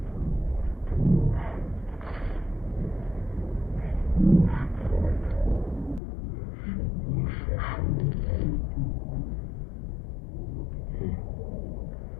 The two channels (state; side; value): drops out; right; at 6.0 s